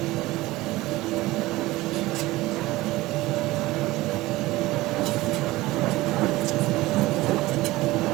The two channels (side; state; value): left; quieter; 18.8 dB